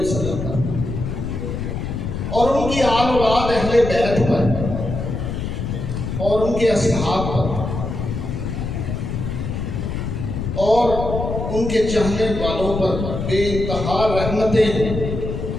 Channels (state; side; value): noise; left; rumble, 4 dB below the sound